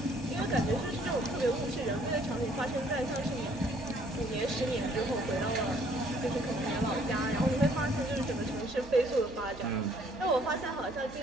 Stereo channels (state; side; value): normal; both; correlation 0.62